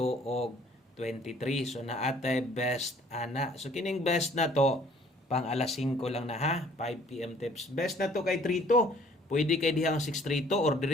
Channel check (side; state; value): both; normal; correlation 0.57